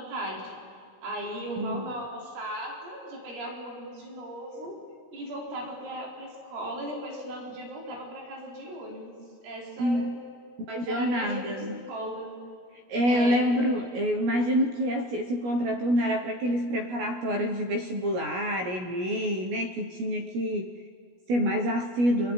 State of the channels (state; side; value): late; left; 17 ms